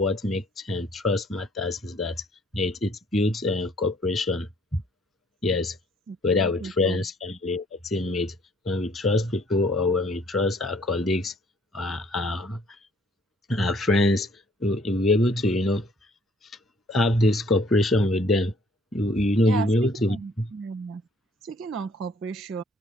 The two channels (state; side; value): normal; both; correlation 0.60